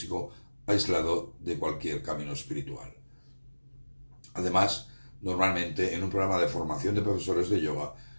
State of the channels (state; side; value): inverted; both; correlation -1.00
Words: aislado de cualquier camino espiritual. Además, normalmente en un programa de formación de profesores de yoga,